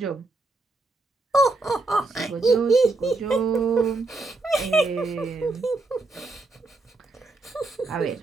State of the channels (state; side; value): quieter; left; 3.3 dB